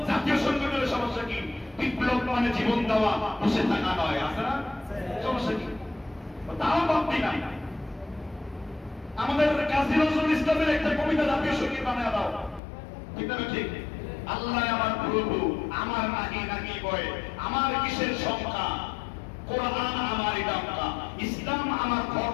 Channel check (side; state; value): right; drops out; at 12.6 s